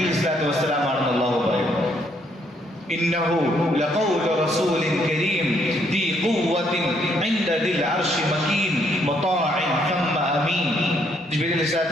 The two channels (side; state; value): both; normal; correlation 0.70